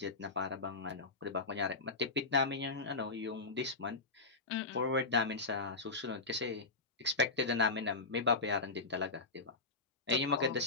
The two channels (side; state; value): right; quieter; 3.5 dB